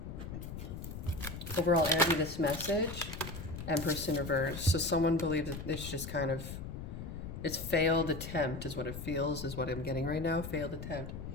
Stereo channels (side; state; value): left; noise; rumble, 8 dB below the sound